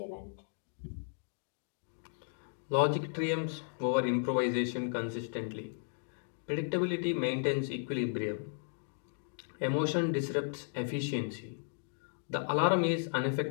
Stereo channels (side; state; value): right; silent; digital silence